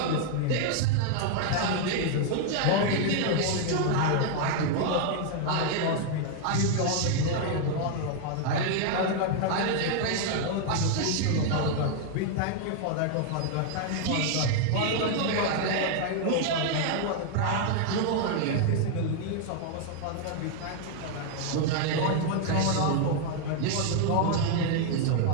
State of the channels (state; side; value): different; both; correlation 0.00